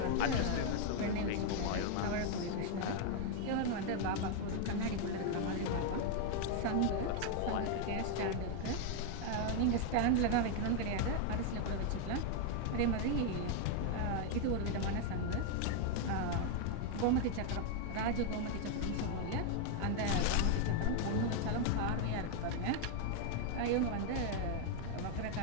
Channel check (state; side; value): different; both; correlation 0.01